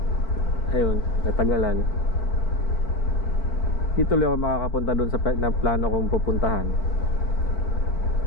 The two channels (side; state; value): right; late; 4.5 ms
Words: Ayun, natagalan. Di tuloy ako makakapunta dun sa plano kong pupuntahan.